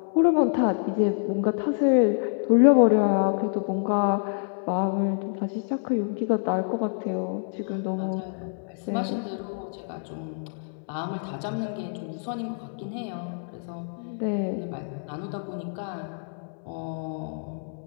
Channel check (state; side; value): silent; right; 60 dB below the other